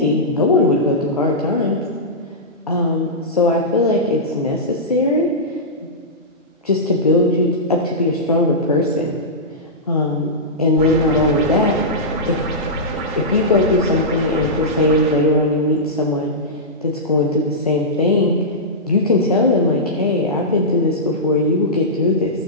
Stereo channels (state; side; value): normal; both; correlation -0.13